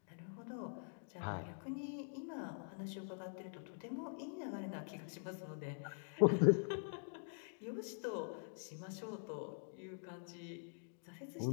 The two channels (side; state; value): right; silent; digital silence